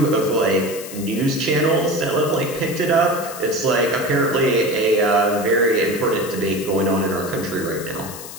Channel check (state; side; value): noise; left; hiss, 13 dB below the sound